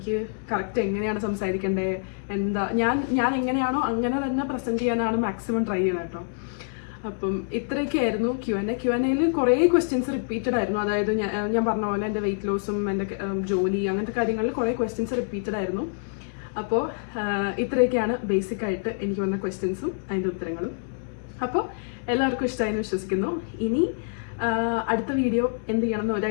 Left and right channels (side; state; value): right; silent; digital silence